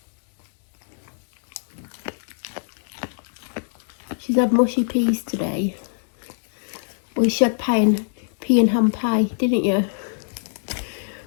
She's had mushy peas today. Well, she had pea and ham pie, didn't you?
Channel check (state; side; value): silent; right; 61 dB below the other